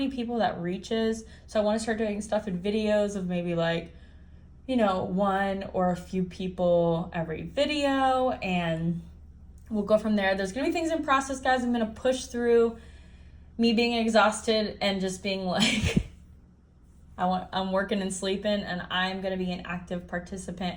people that reaches, so I want to start doing stuff in videos of maybe like, one or a few people every video, and we'll go from there. There's going to be things in process, guys. I'm going to push through me being exhausted and just being like, I'm working and sleeping, and I'm going to be an active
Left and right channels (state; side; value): identical; both; correlation 1.00